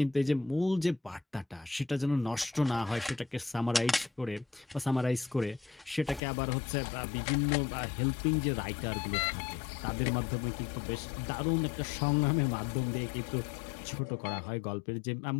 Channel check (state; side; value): drops out; right; at 6.2 s